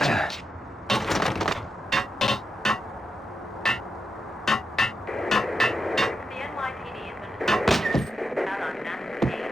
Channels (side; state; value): both; normal; correlation 0.86